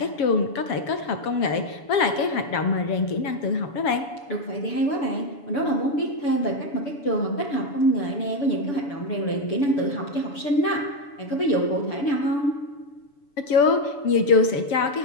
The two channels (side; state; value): right; late; 7.1 ms